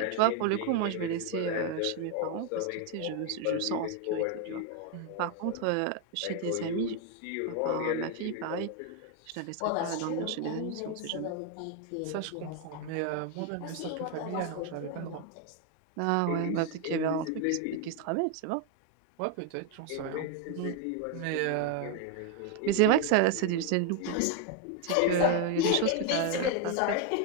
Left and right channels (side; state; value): both; different; correlation 0.01